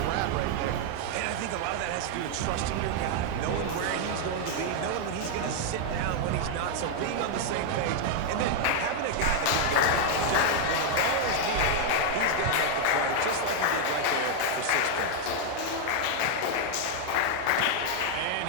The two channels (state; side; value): different; both; correlation 0.00